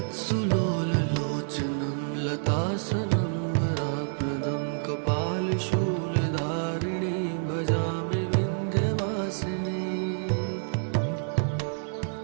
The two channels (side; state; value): left; silent; digital silence